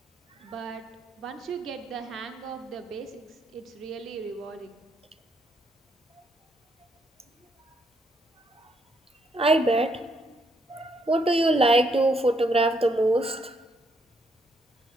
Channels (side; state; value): both; normal; correlation 0.73